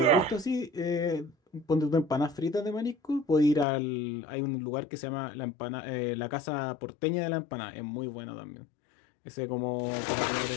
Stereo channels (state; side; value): drops out; right; at 3.7 s